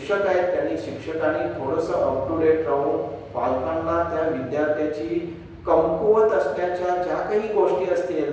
आहेत शिक्षकांनी थोडंसं अप टू डेट राहून पालकांना त्या विद्यार्थ्याची कमकुवत असण्याच्या ज्या काही गोष्टी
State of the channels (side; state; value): both; identical; correlation 1.00